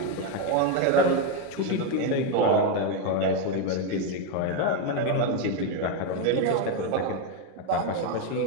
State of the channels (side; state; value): both; different; correlation 0.02